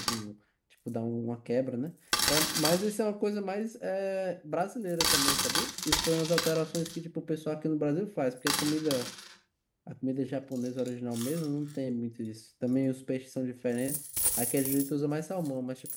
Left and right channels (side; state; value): both; identical; correlation 1.00